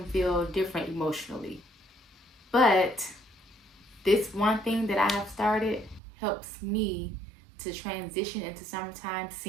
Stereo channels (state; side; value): drops out; left; at 6.0 s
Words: feel different emotionally. But this one thing that I have started helps me to transition into summertime